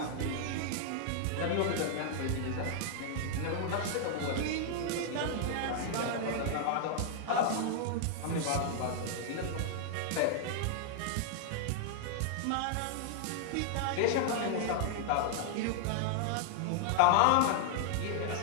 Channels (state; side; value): different; both; correlation -0.01